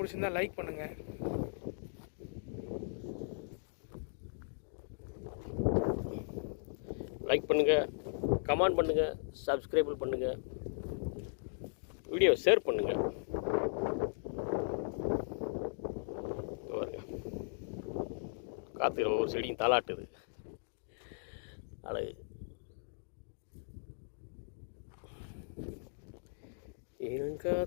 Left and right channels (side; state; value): right; silent; digital silence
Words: லைக் பண்ணுங்கள். லைக் பண்ணுங்கள், கமெண்ட் பண்ணுங்கள், சப்ஸ்கிரைப் பண்ணுங்கள், வீடியோ ஷேர் பண்ணுங்கள். பாருங்க காற்றுல ஒவ்வொரு செடியும் தாளாட்டுது. அழகு.